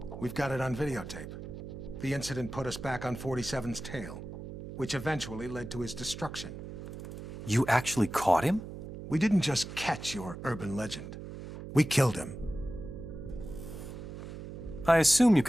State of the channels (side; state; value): right; noise; hum, 10 dB below the sound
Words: We've got it on videotape. The incident put us back on 47's tail, which eventually led to his destruction. You actually caught him? We didn't just catch your urban legend. We killed him. I assume you